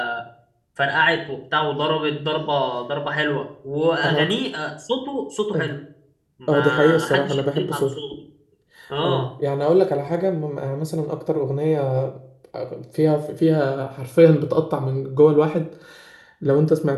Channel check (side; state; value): both; identical; correlation 1.00